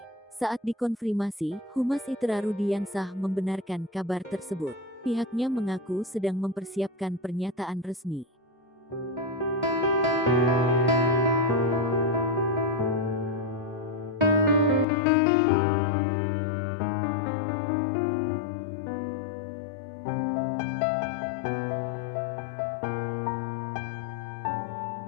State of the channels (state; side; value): drops out; right; at 14.9 s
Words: Saat dikonfirmasi, Humas ITERA Rudiansah membenarkan kabar tersebut. Pihaknya mengaku sedang mempersiapkan pernyataan resmi.